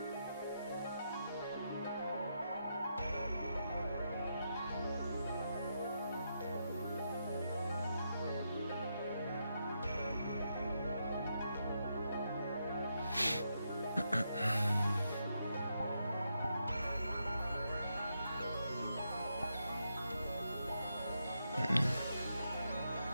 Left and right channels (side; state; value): both; inverted; correlation -0.82